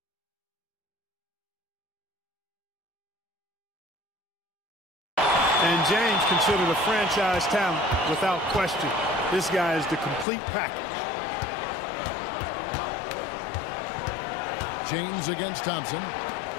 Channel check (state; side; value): drops out; right; at 10.2 s